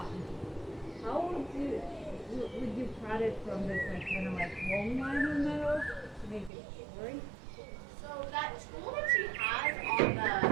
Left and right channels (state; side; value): drops out; left; at 6.5 s